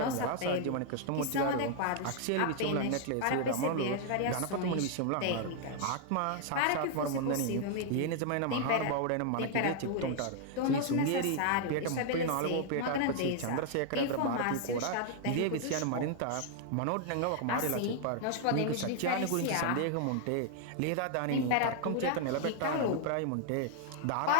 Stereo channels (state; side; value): different; both; correlation 0.00